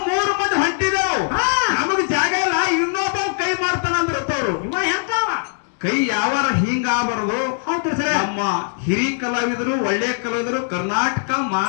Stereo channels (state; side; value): silent; right; 61 dB below the other